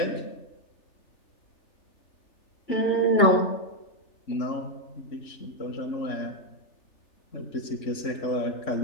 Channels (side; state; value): right; late; 3.6 ms